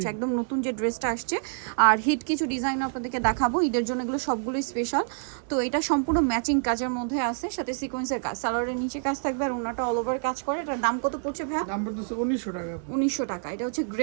একদম নতুন যে ড্রেসটা আসছে আর হিট কিছু ডিজাইন আপনাদেরকে দেখাবো ঈদের জন্য, এগুলো সবগুলোই স্পেশাল। তো এটা সম্পূর্ণ ম্যাচিং কাজের মধ্যে আছে, সাথে সিকোয়েন্সের কাজ, সালোয়ারের নিচে কাজ থাকবে আর ওনাটা অল ওভার কাজ করে। এটার দাম কত পড়ছে ভাইয়া? দাম পড়তেছে 1900 টাকা। 1900 টাকা। এটা হচ্ছে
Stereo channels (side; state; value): left; silent; digital silence